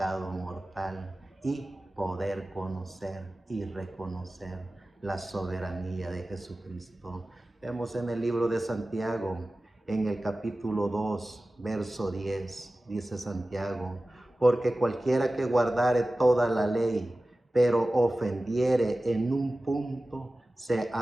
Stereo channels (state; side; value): normal; both; correlation 0.96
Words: mortal y poder conocer y reconocer la soberanía de Jesucristo. Vemos en el libro de Santiago, en el capítulo 2, verso 10, dice Santiago: porque cualquiera que guardare toda la ley, pero ofendiere en un punto, se